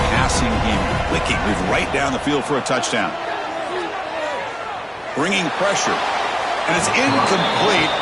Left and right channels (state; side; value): identical; both; correlation 1.00